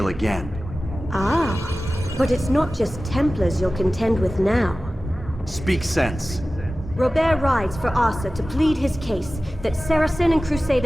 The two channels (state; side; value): normal; both; correlation 0.96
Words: again. Ah, but it's not just Templars you'll contend with now. Speak sense. Robert rides for Arsa to plead his case that Saracen and